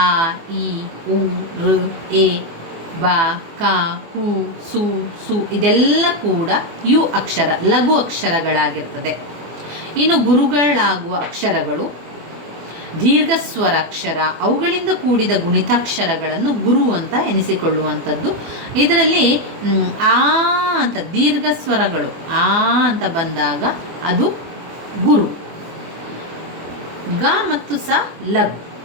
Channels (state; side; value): late; left; 24 ms